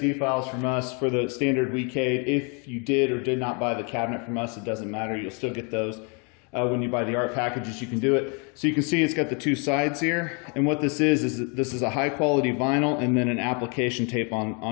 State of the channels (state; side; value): quieter; right; 35.1 dB